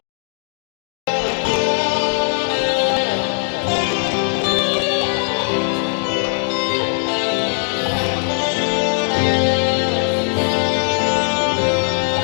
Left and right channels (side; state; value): right; silent; digital silence